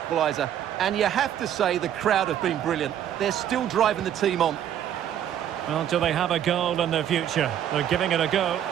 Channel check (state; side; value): quieter; left; 10.3 dB